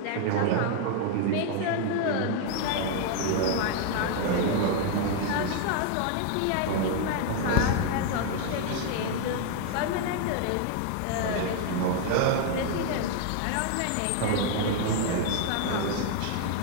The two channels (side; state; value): both; different; correlation 0.00